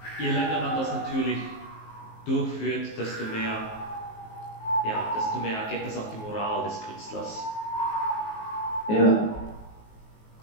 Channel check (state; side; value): late; right; 19 ms